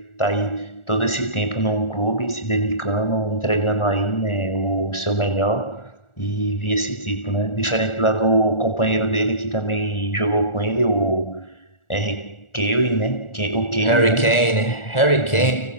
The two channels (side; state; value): right; late; 1.4 ms